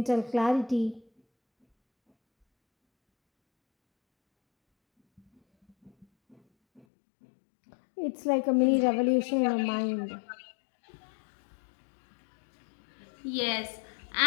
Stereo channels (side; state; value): right; drops out; at 6.9 s